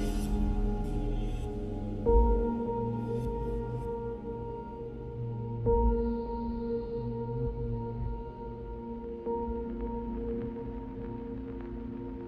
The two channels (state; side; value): identical; both; correlation 1.00